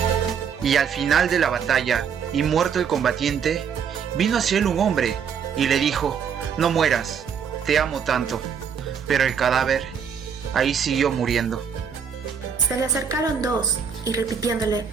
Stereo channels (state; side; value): quieter; left; 7.1 dB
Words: Y al final de la batalla, y muerto el combatiente, vino hacia él un hombre, y le dijo: no mueras, te amo tanto. Pero el cadáver ahí siguió muriendo. Se le acercaron dos y repitiéndole,